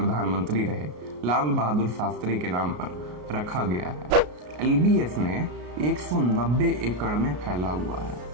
रहे लाल बहादुर शास्त्री के नाम पर रखा गया है। LBSNA 190 एकड़ में फैला हुआ है।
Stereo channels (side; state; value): left; late; 33 ms